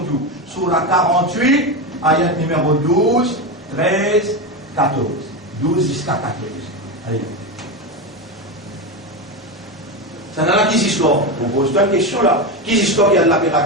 nous. Sourate 48, ayat numéro 12, 13, 14. 12 jusqu'à 14. Allez. Ça n'a pas qui histoire. Vous posez une question là. Qui histoire qui Allah peut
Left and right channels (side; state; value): both; normal; correlation 0.16